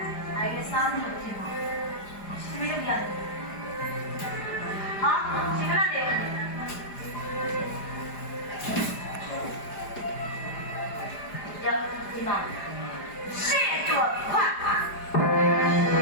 အဲ့ဒီစားလို့ဖြစ်မှာရှင်မလုပ်ရတယ်ဟာရှင်ကလည်းရဒီမှာရှေ့တော့ခွတ်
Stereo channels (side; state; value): right; late; 4.9 ms